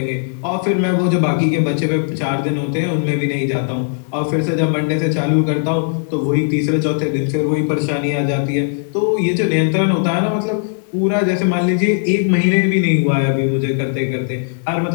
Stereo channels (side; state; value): right; silent; digital silence